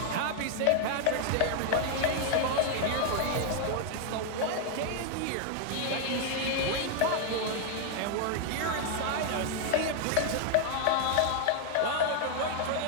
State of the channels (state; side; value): different; both; correlation 0.00